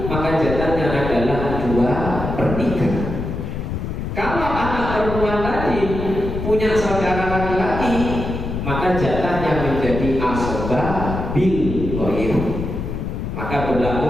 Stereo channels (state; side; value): noise; left; rumble, 5 dB below the sound